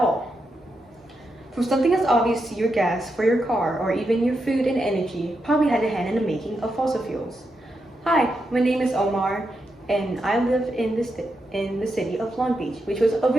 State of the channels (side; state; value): both; normal; correlation 0.85